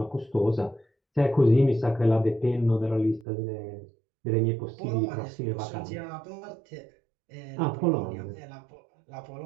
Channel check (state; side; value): drops out; left; at 3.2 s